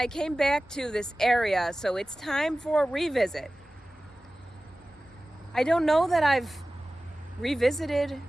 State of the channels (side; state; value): both; normal; correlation 0.97